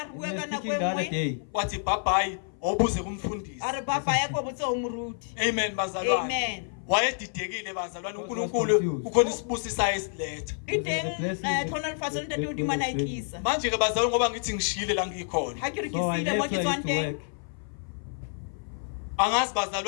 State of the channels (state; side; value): silent; right; 56 dB below the other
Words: re We bua were ka nako speaking e the other nngwe. day. wathi bhabhayi awubuze kumfundisi A re papa ya ko botse o moruti. amen bazalwane Amen. wayedidekile bazalwane God was uNkulunkulu confused. kukhona isibusisayo esiletha E teng thona lefatshe le ntate modimo a na e tlisa. manje ke bazalwane ngoba ngithi ngishiyile la ngikhona Ha ke re ke So I siile mo left ke where I tswang used to teng. work. angazi